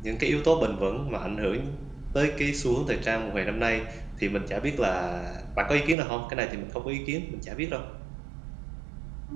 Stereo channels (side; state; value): left; drops out; at 6.0 s